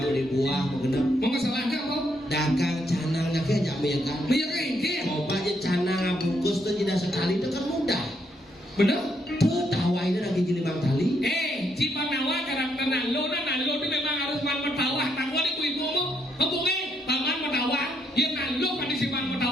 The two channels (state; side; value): normal; both; correlation 0.75